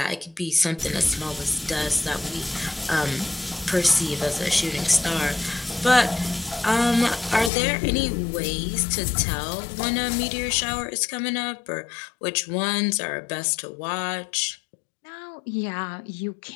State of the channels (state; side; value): drops out; right; at 7.5 s